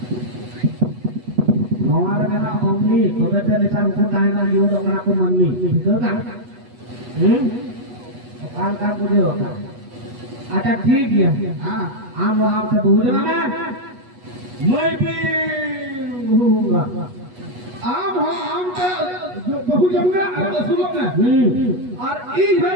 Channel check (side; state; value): left; late; 8.2 ms